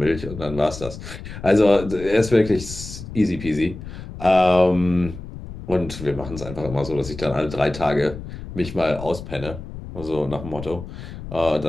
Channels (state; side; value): noise; left; rumble, 11 dB below the sound